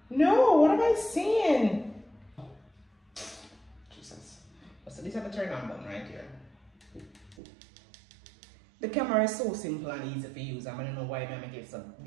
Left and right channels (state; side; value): drops out; left; at 7.4 s